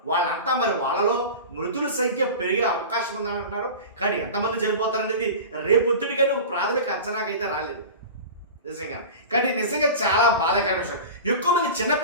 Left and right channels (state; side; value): inverted; both; correlation -0.32